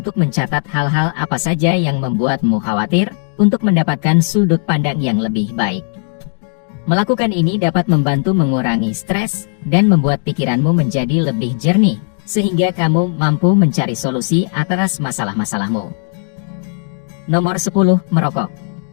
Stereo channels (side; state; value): right; silent; 62 dB below the other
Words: mencatat hal-hal apa saja yang membuatmu khawatir, untuk mendapatkan sudut pandang yang lebih baik. Melakukan ini dapat membantu mengurangi stres, dan membuat pikiranmu menjadi lebih jernih, sehingga kamu mampu mencari solusi atas masalah-masalahmu. Nomor 10. Merokok.